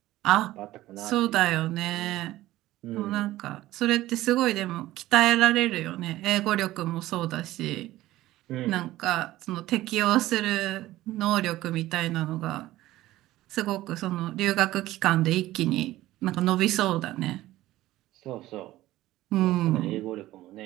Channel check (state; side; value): quieter; left; 16.0 dB